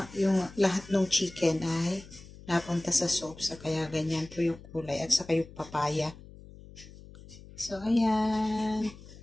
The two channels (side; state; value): left; noise; hum, 18 dB below the sound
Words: yung lahat ng chicken ay napunta sa soup. So, kaya ganyan po yung kulay. At saka yung papaya. So, ayan.